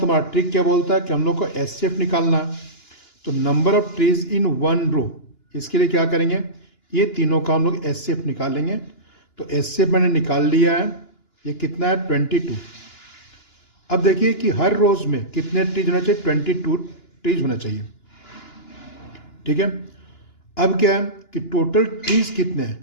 हमारा ट्रिक क्या बोलता है कि हम लोग को एचसीएफ निकालना है. तो number of trees in one row, इसके लिए क्या करेंगे, ये तीनों का हम लोग एचसीएफ निकालेंगे. तो एचसीएफ मैंने निकाल लिया है. ये कितना है 22. अब देखिए कि हर रोज में कितने ट्रीज होना चाहिए, 22 ट्रीज होना चाहिए. ठीक है. अब क्या है कि टोटल ट्रीज कितने हैं.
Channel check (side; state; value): right; late; 2.9 ms